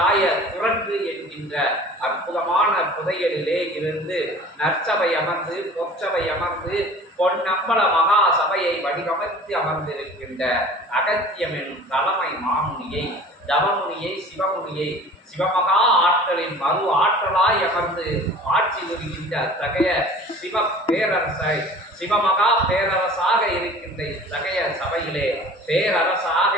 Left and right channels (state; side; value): normal; both; correlation 0.44